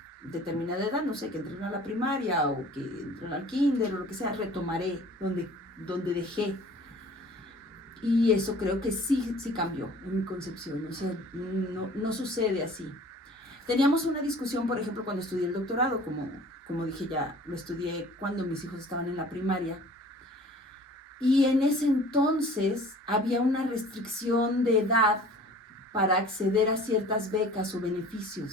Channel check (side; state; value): both; normal; correlation 0.47